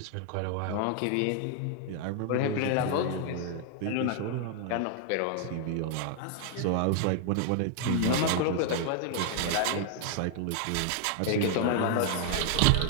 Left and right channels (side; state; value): both; different; correlation 0.00